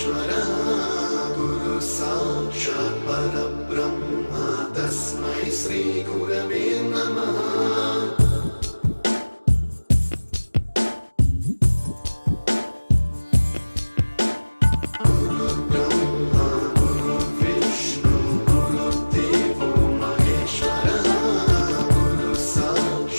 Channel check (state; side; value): inverted; both; correlation -1.00